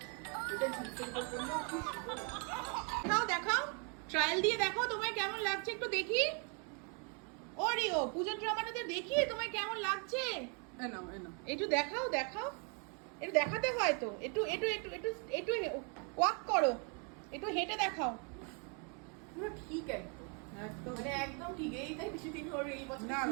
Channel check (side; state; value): left; quieter; 37.2 dB